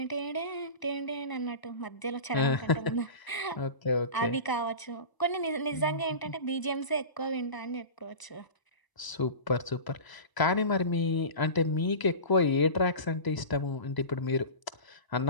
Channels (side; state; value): right; late; 1.0 ms